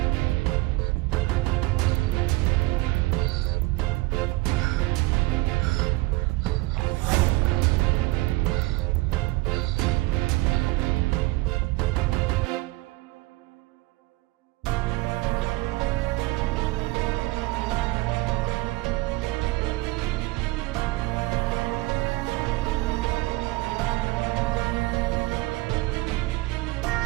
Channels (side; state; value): left; quieter; 21.5 dB